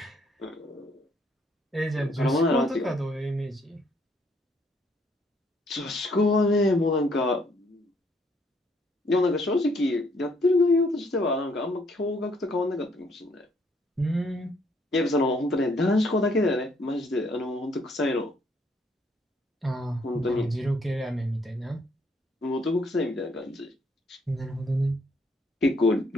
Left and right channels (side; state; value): both; normal; correlation 0.67